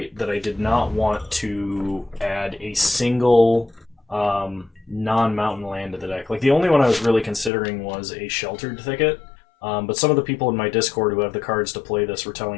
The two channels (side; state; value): right; drops out; at 7.5 s